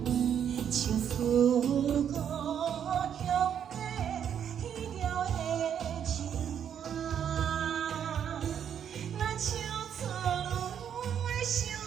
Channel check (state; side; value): quieter; left; 8.7 dB